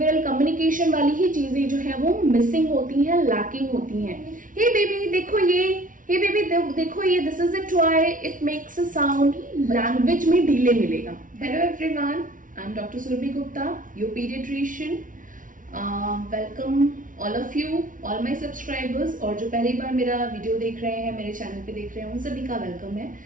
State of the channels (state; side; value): late; left; 0.38 ms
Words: कम्युनिकेशन वाली ही चीजें जो है वो मिसिंग होती हैं, लैकिंग होती हैं। हे बेबी देखो ये, हे बेबी देखो ये, this is a toy, it makes a sound, language में डिले मिलेगा। Hello everyone, I am doctor Surabhi Gupta, your paediatrician. Welcome all of you, all my subscribers, और जो पहली बार मेरा वीडियो देख रहे हैं, मेरे चैनल पे देख रहे हैं, उन सभी का वेलकम है।